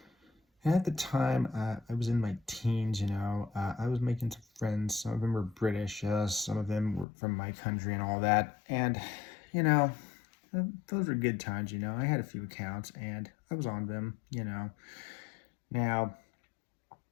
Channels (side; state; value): right; drops out; at 7.1 s